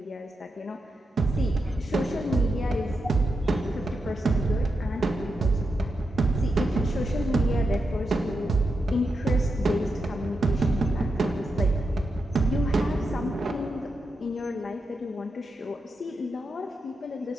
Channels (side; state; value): both; normal; correlation 0.87